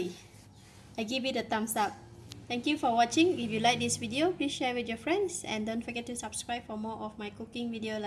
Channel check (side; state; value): both; identical; correlation 1.00